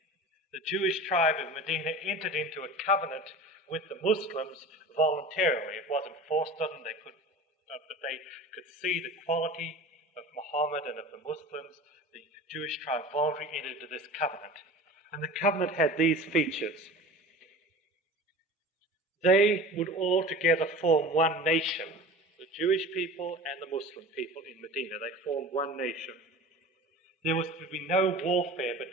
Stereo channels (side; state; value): both; normal; correlation 0.36